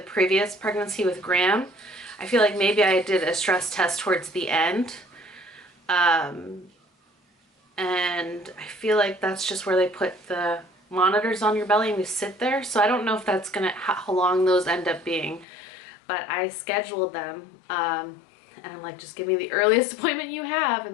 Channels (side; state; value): right; drops out; at 15.5 s